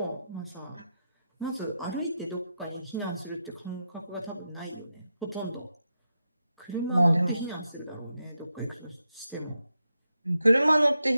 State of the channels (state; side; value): inverted; both; correlation -0.87